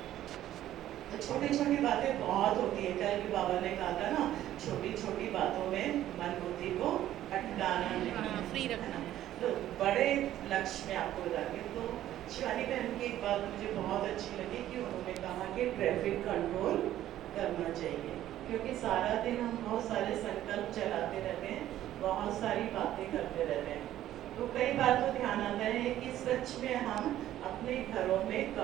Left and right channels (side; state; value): left; quieter; 12.9 dB